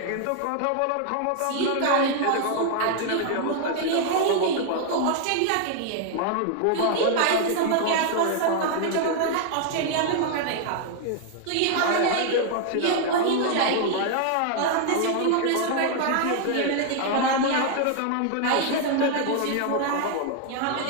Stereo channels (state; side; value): different; both; correlation 0.00